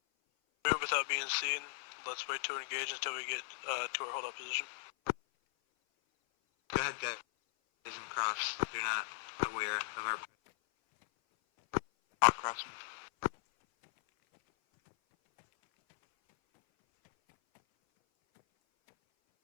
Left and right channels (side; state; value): right; silent; 53 dB below the other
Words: Move without being seen. Let's wait to engage until we get to our hold-up position. Go ahead, guys. Isn't cross. You're not aware of our. Walk crossing.